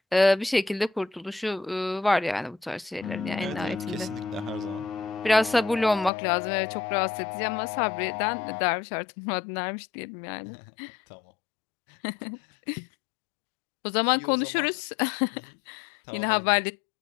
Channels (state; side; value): drops out; right; at 6.1 s